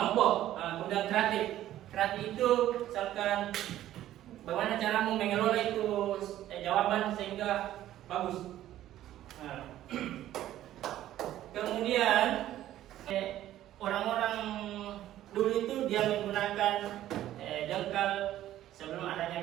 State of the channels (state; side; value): quieter; left; 13.1 dB